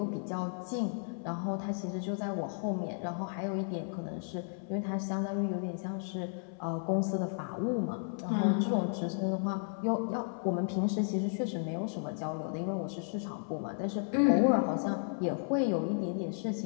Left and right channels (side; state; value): right; silent; 55 dB below the other